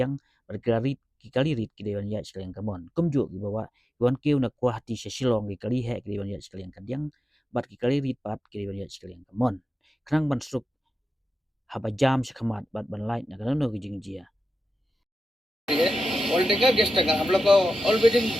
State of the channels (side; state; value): both; normal; correlation 0.91